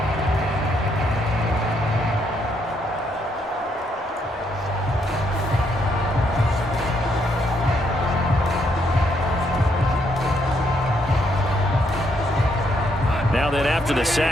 Now then, after the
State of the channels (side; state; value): both; normal; correlation 0.74